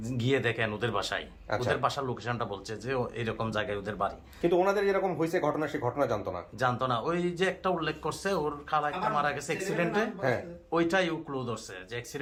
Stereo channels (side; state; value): both; identical; correlation 1.00